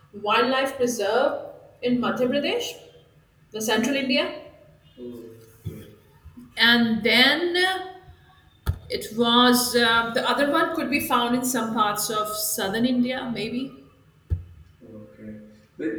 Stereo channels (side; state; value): both; identical; correlation 1.00